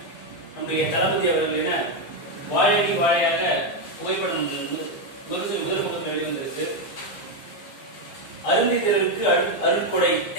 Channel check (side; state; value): right; late; 15 ms